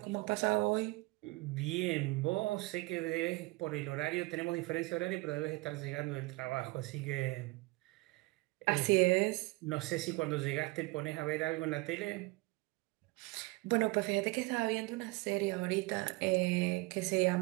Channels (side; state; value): left; quieter; 23.5 dB